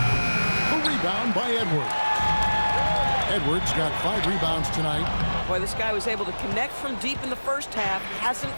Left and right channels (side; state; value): both; inverted; correlation -1.00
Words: rebound by Edwards. Edwards got 5 rebounds tonight. Boy, this guy was able to connect from deep in the first half. Hasn't